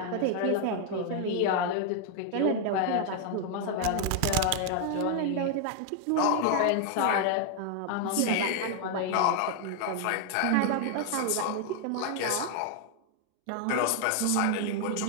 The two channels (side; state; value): both; different; correlation 0.00